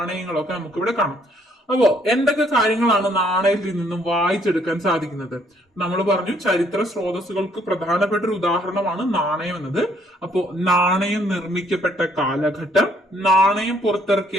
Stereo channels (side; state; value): both; normal; correlation 0.66